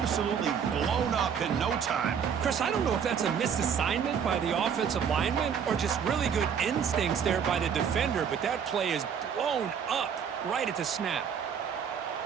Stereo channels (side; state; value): left; quieter; 7.5 dB